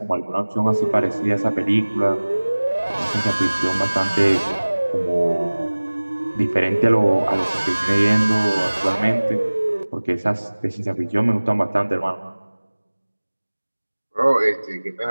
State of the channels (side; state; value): both; inverted; correlation -1.00